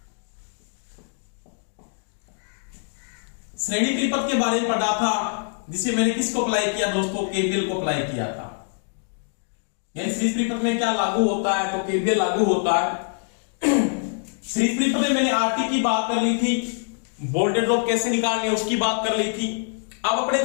श्रेणी परिपथ के बारे में पढ़ा था, जिसे मैंने किसको अप्लाई किया दोस्तों? केवीएल को अप्लाई किया था। यानी सीरीज परिपथ में क्या लागू होता है? तो केवीएल लागू होता है। सीरीज परिपथ में मैंने आरटी की बात कर ली थी, वोल्टेज ड्रॉप कैसे निकालनी है उसकी बात कर ली थी। अब अपने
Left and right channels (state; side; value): silent; right; digital silence